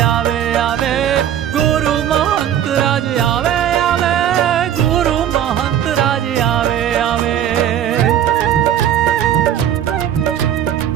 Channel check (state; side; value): quieter; left; 10.3 dB